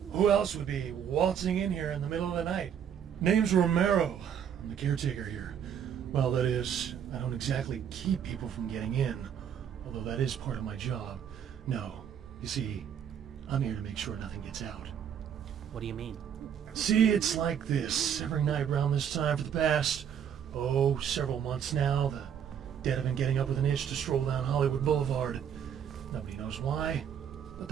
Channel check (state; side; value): quieter; left; 8.5 dB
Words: Who else would be waltzing in here in the middle of the night? Name's Romero. I'm the caretaker here. Well, that is, I don't exactly keep people from getting in, although that is part of my job. No, you see, I'm here to make sure nothing gets out. What do you mean? See, it's like this. Every night around this time for the past, several months now, the dead have been getting up with an itch to stroll down Hollywood Boulevard. Nobody knows why, but